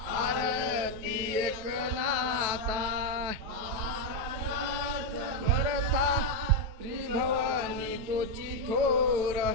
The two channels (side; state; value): left; late; 9.1 ms